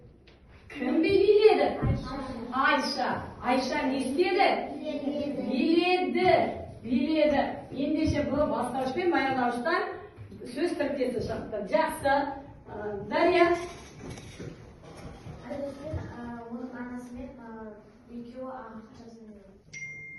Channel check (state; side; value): identical; both; correlation 1.00